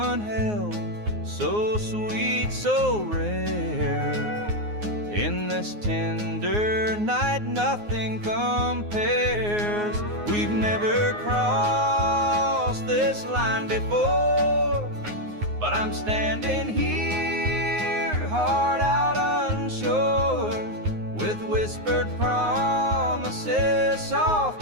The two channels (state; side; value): late; left; 9.6 ms